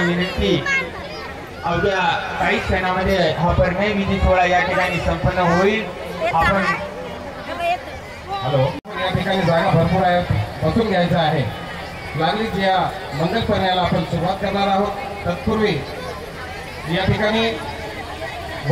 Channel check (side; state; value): both; identical; correlation 1.00